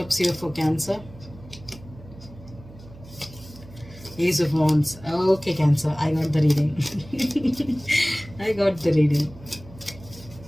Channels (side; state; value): right; noise; hum, 19 dB below the sound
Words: here for Cancer? Ace of Wands. Okay, Cancer, I got the reading. I got the reading.